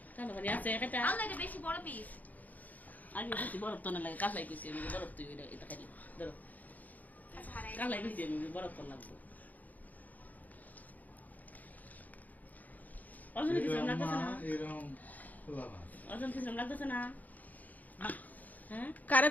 তাহলে মানে আছে একটা আল্লাহ এটা বেশি বড় পিস আগে বেশি বরফ তো না লাগে কালাই কইছি আমি বরফ তুই এটা খাইলি ধরো আচ্ছা হারাই কালাই কইছি আমি বরফ তো লাগবে অজন কিছু লাগতেছে না এরকম খোলা ভাত অজন কিছু লাগতেছে না হ্যাঁ কারে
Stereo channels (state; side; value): late; right; 0.080 ms